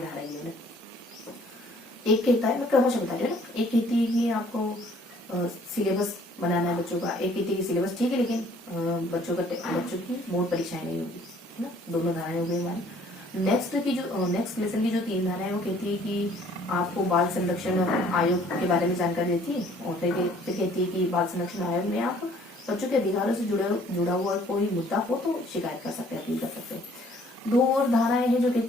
है। एक कहता है, मैं क्रमशः बता रही हूँ ना, एक कहती है कि आपको सिलेबस बनाना है बच्चों का, एक कहती है कि सिलेबस ठीक है लेकिन बच्चों की बोर्ड परीक्षाएं नहीं होगी, है ना। दोनों धाराएं हो गई हमारी। नेक्स्ट लेसन की जो 3 धाराएं है वो कहती है कि आपको बाल संरक्षण आयोग के बारे में जानकारी देती है, और फिर कहती है कि बाल संरक्षण आयोग में आप बच्चों के अधिकारों से जुड़ा हुआ कोई मुद्दा हो तो शिकायत कर सकते हैं, अपील कर सकते हैं। 2 और धाराएं हैं जो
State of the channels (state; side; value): normal; both; correlation 0.58